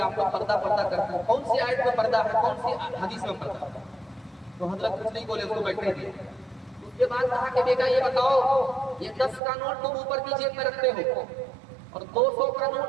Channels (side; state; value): left; drops out; at 9.4 s